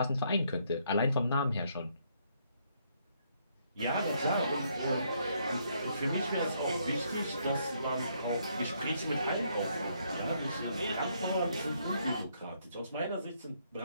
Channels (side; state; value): both; inverted; correlation -0.72